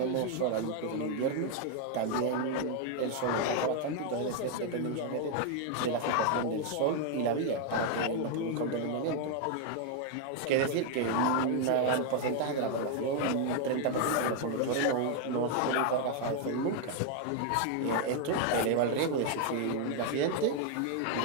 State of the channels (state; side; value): different; both; correlation 0.00